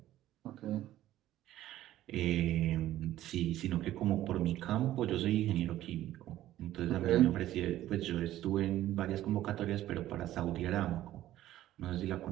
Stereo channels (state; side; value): quieter; left; 13.8 dB